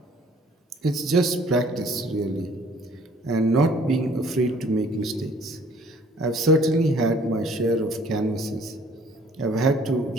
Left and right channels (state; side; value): normal; both; correlation 0.57